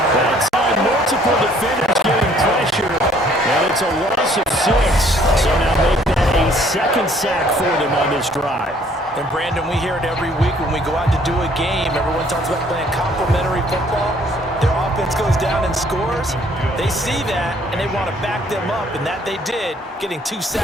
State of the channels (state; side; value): normal; both; correlation 0.61